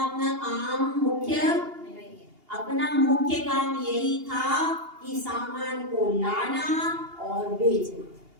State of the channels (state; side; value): late; left; 2.8 ms